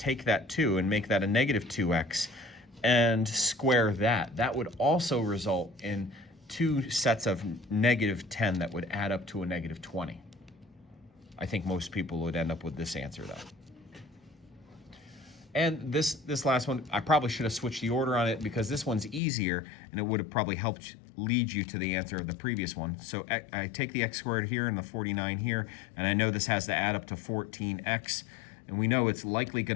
that 2 and make that a negative 2x and square that. That would also result in 2 sets of negative 10 that would add up to a negative 20. I think most people would end up with this answer, though. And this last one, I probably should have switched the order on it because this one's easier and it would have probably helped lead you to the answer of the previous one. So I take the x squared here and the 49 here, and I know this has to add up to 14x. And we know it's likely going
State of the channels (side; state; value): right; drops out; at 19.2 s